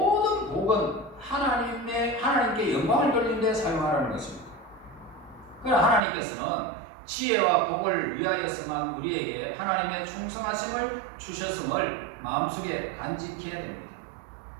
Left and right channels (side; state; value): left; drops out; at 6.0 s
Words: 복은 하나님께 영광을 돌리는 데 사용하라는 것입니다. 그러나 하나님께서는 지혜와 복을 위하여서만 우리에게 하나님의 충성하심을 주셨음을 마음속에 간직해야 됩니다.